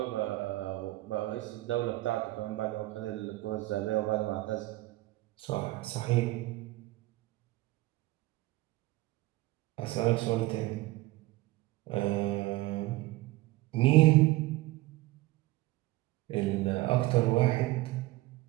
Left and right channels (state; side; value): quieter; left; 18.7 dB